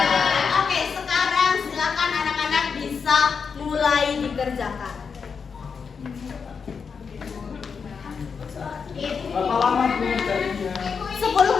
Oke, sekarang silakan anak-anak bisa mulai dikerjakan. Berapa lama pengerjaannya?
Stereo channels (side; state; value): right; quieter; 5.9 dB